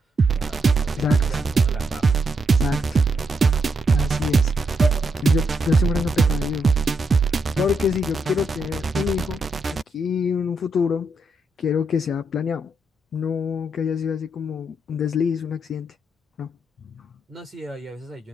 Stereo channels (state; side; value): normal; both; correlation 0.80